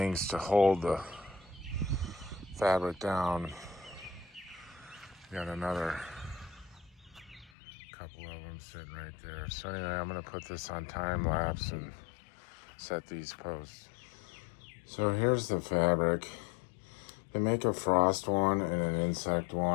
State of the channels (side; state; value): right; drops out; at 7.5 s